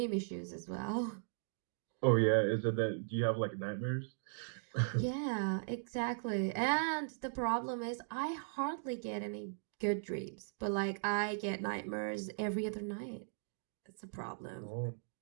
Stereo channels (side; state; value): left; silent; digital silence